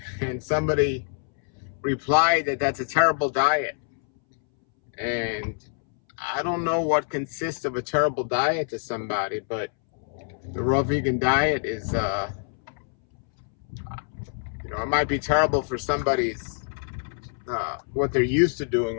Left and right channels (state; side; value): silent; right; 61 dB below the other